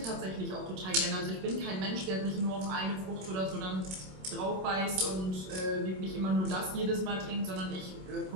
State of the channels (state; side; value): late; left; 27 ms